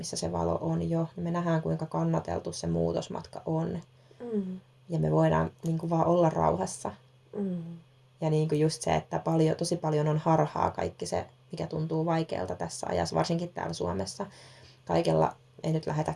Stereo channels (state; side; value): identical; both; correlation 1.00